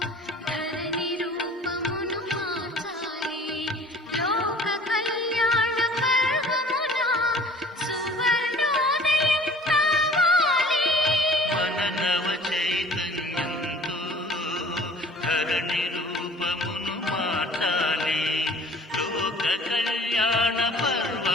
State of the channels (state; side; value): normal; both; correlation 0.49